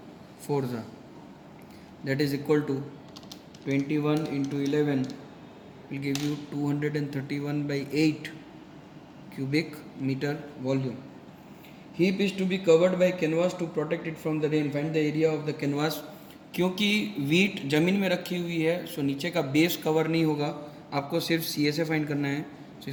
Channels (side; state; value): both; identical; correlation 1.00